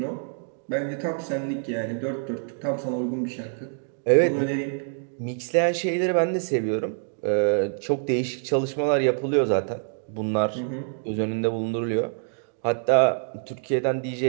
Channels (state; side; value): silent; left; digital silence